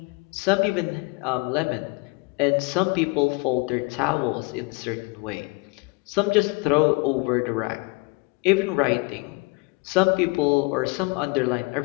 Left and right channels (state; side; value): quieter; right; 28.5 dB